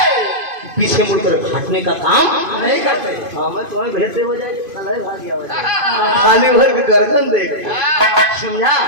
पीछे मुड़कर हटने का काम नहीं करते मैं तुम्हें भेजते हो जाए खाली भर के गर्दन देख समझा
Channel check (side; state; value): left; late; 2.5 ms